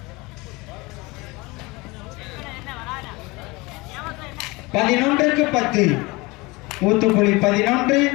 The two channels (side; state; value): right; quieter; 23.8 dB